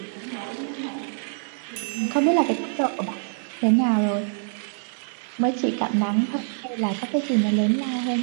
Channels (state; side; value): silent; left; digital silence